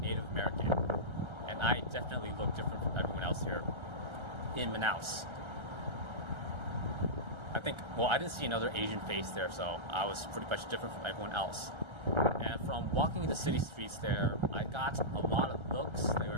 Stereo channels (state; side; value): late; left; 1.3 ms